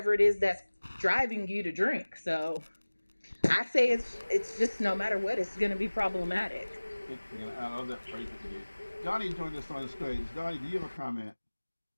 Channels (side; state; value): both; inverted; correlation -1.00